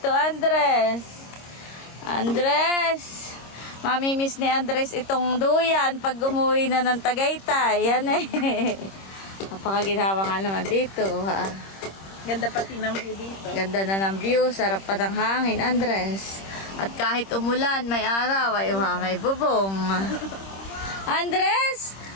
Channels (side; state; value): right; late; 26 ms